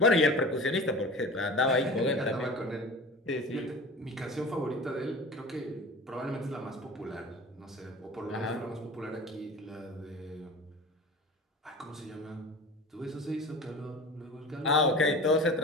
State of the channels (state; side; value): normal; both; correlation 0.36